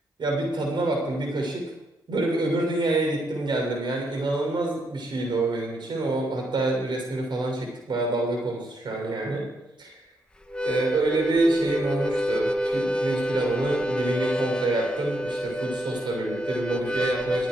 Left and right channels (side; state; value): both; normal; correlation 0.78